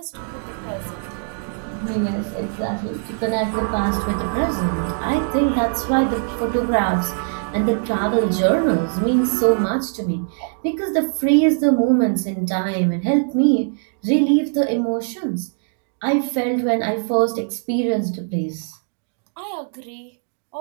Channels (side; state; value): left; silent; digital silence